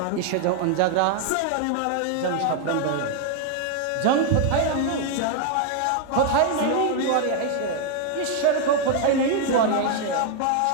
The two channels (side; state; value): both; different; correlation 0.00